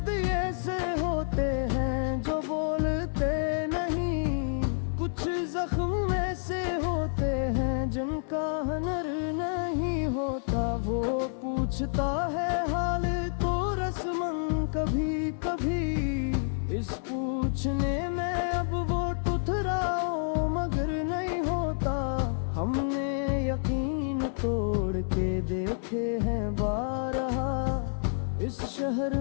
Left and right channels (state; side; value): silent; right; digital silence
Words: ऐसे होते हैं जो बोलते नहीं, कुछ जख्म ऐसे होते हैं जिनका हनर नहीं होता। वो पूछता है हाल तो रस्मन कभी कभी, इस पूछने में अब वो टुथराओ मगर नहीं होता। हमने यकीन तोड़ के देखे हैं बारहा, इस शहर